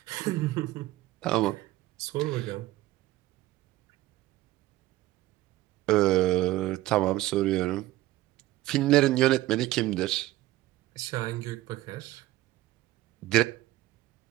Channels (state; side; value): quieter; left; 16.8 dB